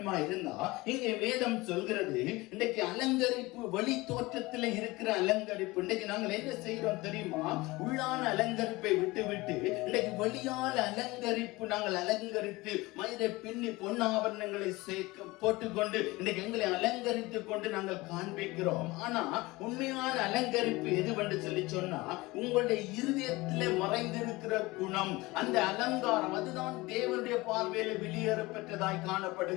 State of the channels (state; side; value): quieter; right; 21.4 dB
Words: இருந்தா இங்கே வேதம் சொல்கிறது இன்றைக்கு அலங்கரிப்பு வெளி தோற்றத்தில் இருக்கிற அலங்கரிப்பு. இன்றைக்கு நாங்கள் என்ன செய்கிறோம் தெரியுமா? உள்ளான அலங்கரிப்பை விட்டு இன்றைக்கு வெளியான அலங்கரிப்பு நாங்கள் அலங்கரித்து மயிரை பின்னி பொன்னாபரணங்களை போட்டுக்கொண்டு இன்றைக்கு எங்களை அலங்கரித்துக் கொண்டு நாங்கள் காண்பிக்கிறோம். ஆனா உண்மையான அலங்கரிப்பு எதுவென்று சொல்லி சொன்னா உங்களுடைய இருதயத்திலே மறைந்திருக்கிற குணம், அந்த அலங்காரம், அதுதான் தேவனுடைய பார்வையில வெளியேற பெற்றதாய்